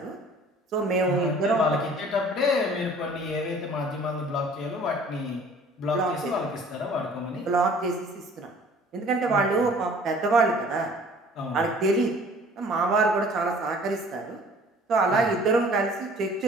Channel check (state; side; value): normal; both; correlation 0.51